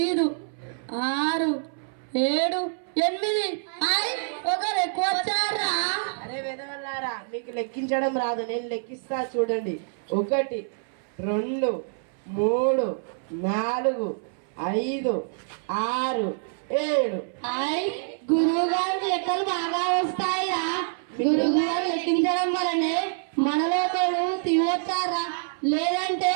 6 7 8. ఒకరు ఎక్కువ వచ్చారా? అరే విధవల్లారా, మీకు లెక్కించడం రాదు, నేను లెక్కిస్తా చూడండి. 1 2 3 4 5 6 7. గురువు గారు లెక్కలు బాగా వస్తాయిరా. గురువు గారు లెక్కించడం వల్లనే మనలో ఒకడు తివచ్చారా, లేదంటే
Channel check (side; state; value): left; silent; 60 dB below the other